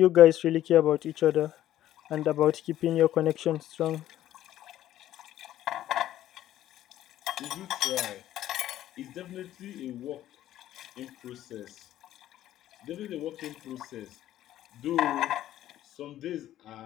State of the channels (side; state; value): right; quieter; 12.9 dB